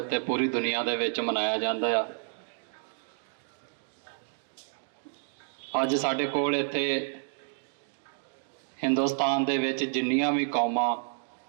ਪੂਰੀ ਦੁਨੀਆ ਦੇ ਵਿੱਚ ਮਨਾਇਆ ਜਾਂਦਾ ਆ। ਅੱਜ ਸਾਡੇ ਕੋਲ ਇੱਥੇ ਹਿੰਦੁਸਤਾਨ ਦੇ ਵਿੱਚ ਜਿੰਨੀਆਂ ਵੀ ਕੌਮਾਂ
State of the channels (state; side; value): silent; left; digital silence